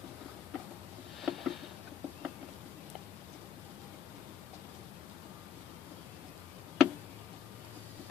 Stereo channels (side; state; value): right; quieter; 8.9 dB